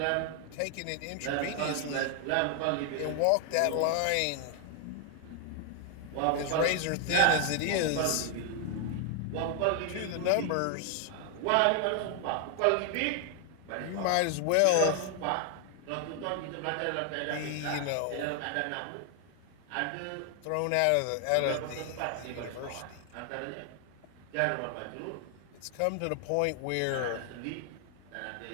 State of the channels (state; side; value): different; both; correlation 0.00